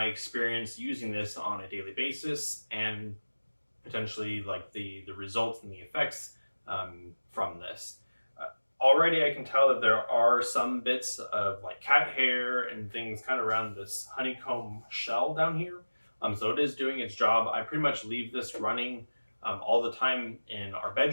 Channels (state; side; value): inverted; both; correlation -1.00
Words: experience using this on a daily basis and potentially like the results and the effects from this. Already I can tell that there are some bits of like cat hair and things kind of around this honeycomb shell down here. So it is doing its job. I pretty much leave this running all the time in our